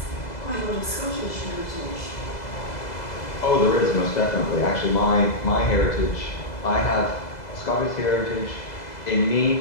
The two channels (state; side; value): late; right; 2.0 ms